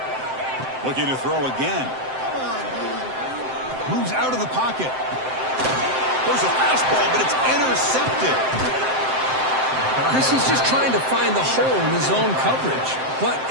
Looking to throw again. Moves out of the pocket. There's a fastball, but it's intercepted. Chris, he's just trying to find the hole in his own coverage. But,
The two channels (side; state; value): left; late; 7.7 ms